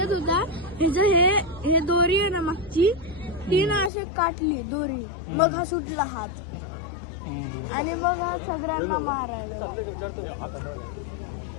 होता, हे दोरी आहे ना मागची, ती ना अशी काटली दोरी, मग हा सुटला हात. आणि मग हा सगळ्यांना मारायला.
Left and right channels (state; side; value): drops out; right; at 3.9 s